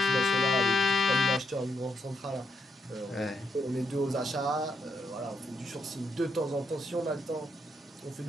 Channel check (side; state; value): both; normal; correlation 0.79